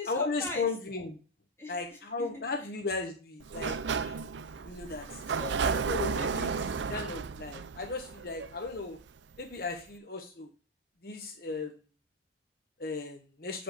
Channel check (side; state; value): both; normal; correlation -0.01